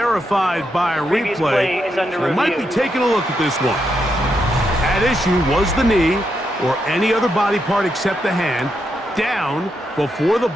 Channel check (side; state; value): both; normal; correlation 0.82